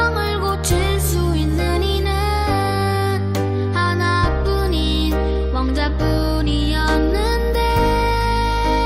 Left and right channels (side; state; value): both; identical; correlation 1.00